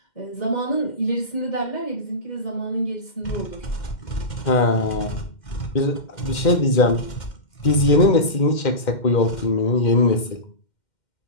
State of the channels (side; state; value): right; late; 2.1 ms